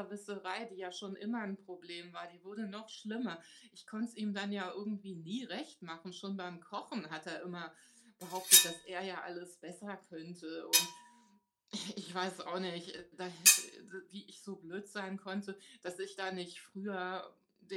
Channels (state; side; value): identical; both; correlation 1.00